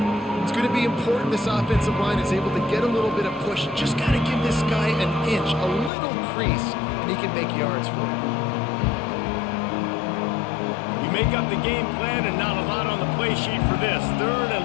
It's going to be important this offensive line is able to get a little bit of push. Just got to give this guy an inch, a little crease, and he can make yards for you. You make up the game plan and not a lot on the play sheet for this. Third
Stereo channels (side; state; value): right; drops out; at 5.9 s